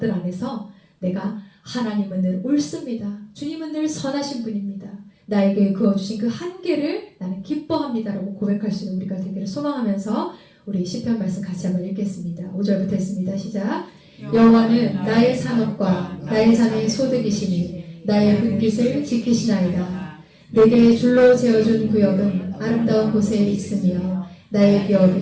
안에서 내가 하나님은 늘 옳습니다. 주님은 늘 선하신 분입니다. 나에게 그어주신 그 한계를 나는 기뻐합니다라고 고백할 수 있는 우리가 되기를 소망하면서 우리 시편 말씀 같이 한번 읽겠습니다. 5절부터 했습니다. 시작. 여호와는 나의 산업과 나의 자녀의 소득이시니 나의 분깃을 지키시나이다. 내게 줄로 재어준 구역은 아름다운 곳에 있으며 나의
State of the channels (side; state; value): both; identical; correlation 1.00